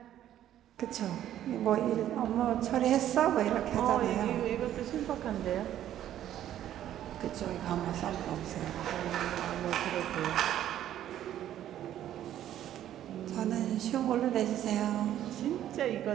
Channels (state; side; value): quieter; left; 11.7 dB